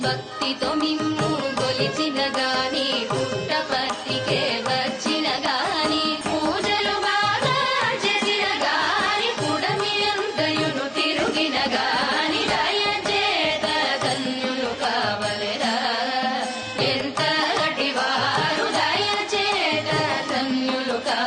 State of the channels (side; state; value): both; identical; correlation 1.00